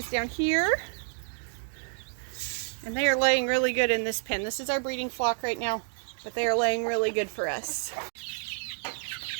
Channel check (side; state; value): left; silent; digital silence